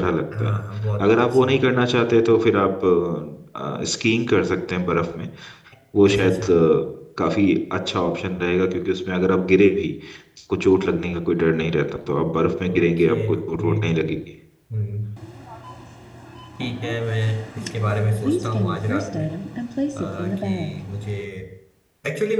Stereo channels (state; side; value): identical; both; correlation 1.00